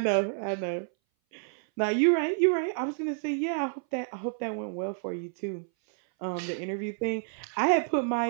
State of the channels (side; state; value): left; silent; 58 dB below the other